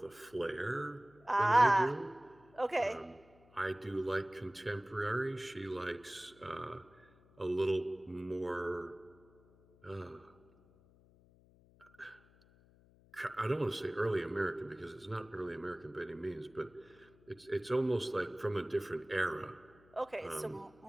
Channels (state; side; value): noise; left; hum, 27 dB below the sound